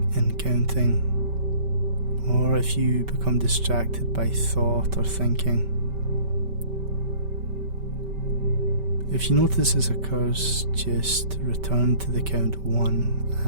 in counting, or if you become distracted by thought or thinking. If you notice this occurs, just return to the count 1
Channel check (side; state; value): left; late; 5.2 ms